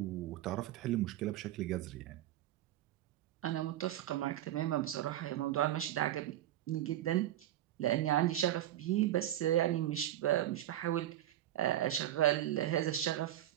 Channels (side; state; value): left; quieter; 12.8 dB